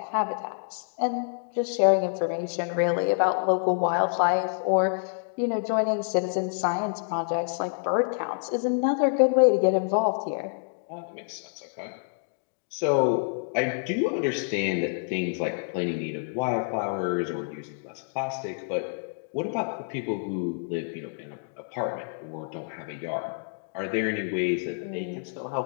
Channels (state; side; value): silent; right; digital silence